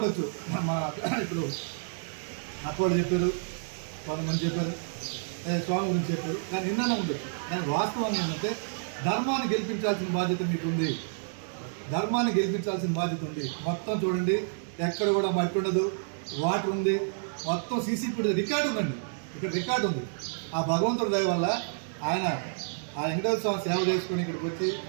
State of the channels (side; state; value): left; silent; digital silence